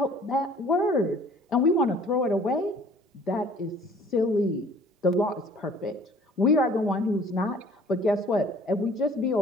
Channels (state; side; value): normal; both; correlation 0.53